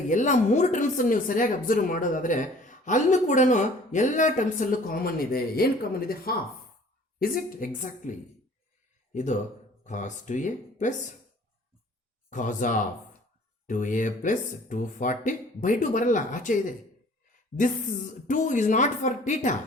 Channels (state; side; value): normal; both; correlation 0.52